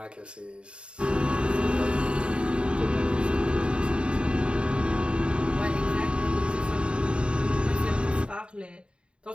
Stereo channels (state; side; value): late; left; 0.054 ms